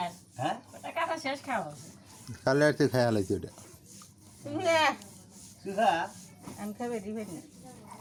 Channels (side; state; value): both; identical; correlation 1.00